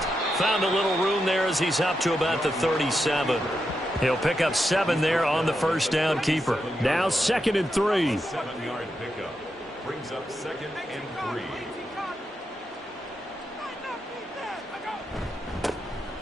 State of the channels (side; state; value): both; normal; correlation 0.86